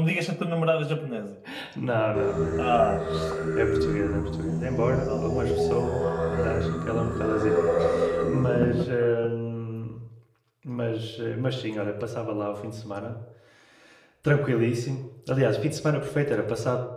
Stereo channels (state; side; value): identical; both; correlation 1.00